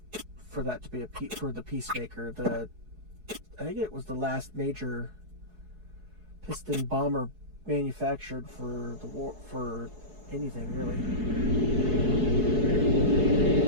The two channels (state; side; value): late; left; 4.7 ms